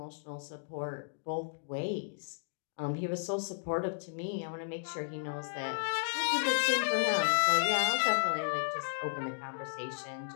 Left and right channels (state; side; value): silent; right; digital silence